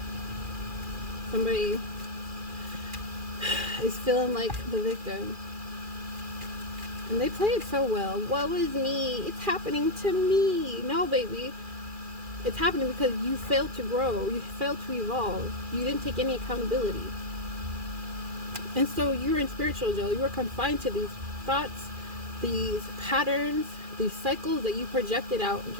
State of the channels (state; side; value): late; left; 2.4 ms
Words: Somebody is feeling like the victim. And they play it so well. Woe is me. It's happening to me. No, baby. It's happening because you failed to grow. You failed to evolve. You didn't take any accountability. And so you're in spiritual jail. You are confined to these thoughts, these patterns, these cycles that you projected out